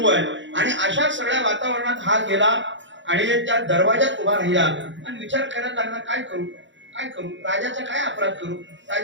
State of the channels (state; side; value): late; left; 0.54 ms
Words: आहे. आणि अशा सगळ्या वातावरणात हा गेला आणि त्या दरवाजात उभा राहिला आणि विचार करायला लागला, काय करू काय करू, राजाचा काय अपराध करू,